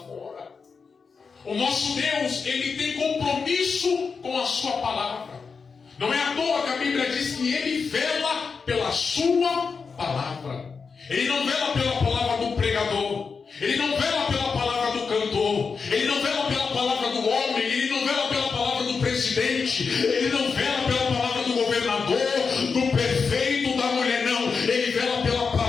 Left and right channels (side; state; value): right; quieter; 5.2 dB